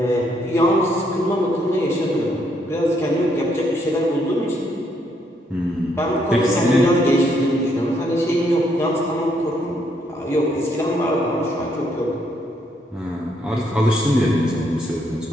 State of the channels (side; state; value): both; normal; correlation 0.73